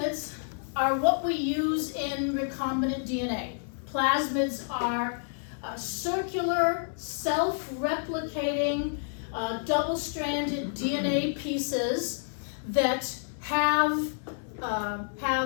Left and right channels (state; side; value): silent; right; 58 dB below the other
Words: are what we use in recombinant DNA. Plasmids are circular, self-replicating, double-stranded DNA pieces that have